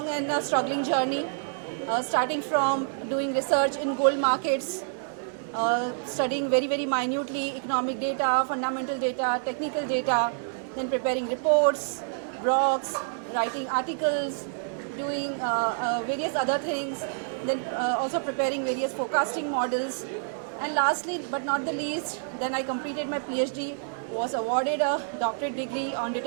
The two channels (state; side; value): silent; left; digital silence